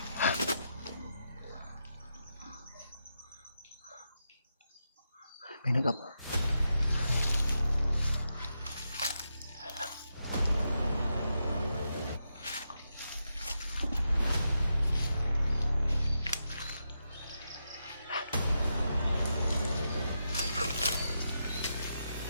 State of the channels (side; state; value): both; inverted; correlation -0.85